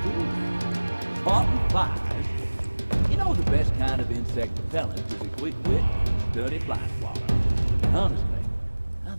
Insect repellent is a quick wit and dirty fly swatter. And honestly, I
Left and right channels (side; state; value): both; inverted; correlation -1.00